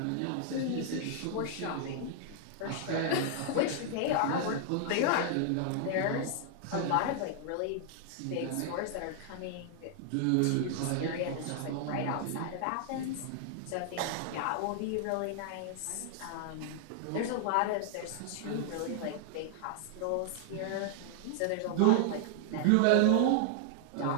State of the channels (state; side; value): different; both; correlation 0.00